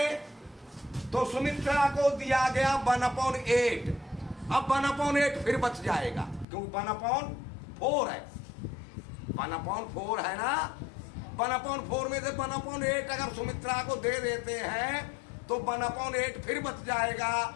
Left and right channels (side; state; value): right; drops out; at 6.5 s